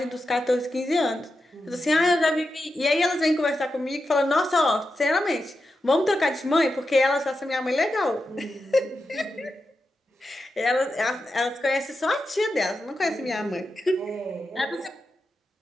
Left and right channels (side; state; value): both; normal; correlation 0.89